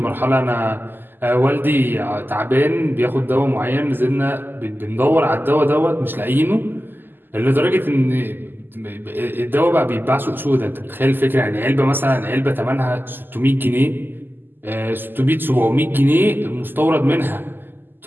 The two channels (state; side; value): late; left; 0.093 ms